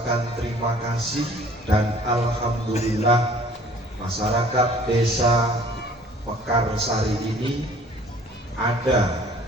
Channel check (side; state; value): both; normal; correlation 0.53